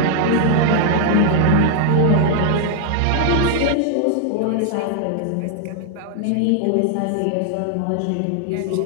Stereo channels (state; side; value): different; both; correlation 0.00